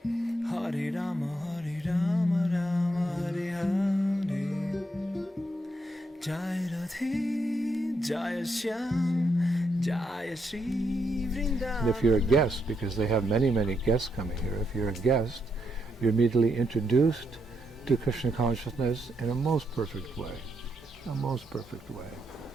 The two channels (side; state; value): both; normal; correlation 0.79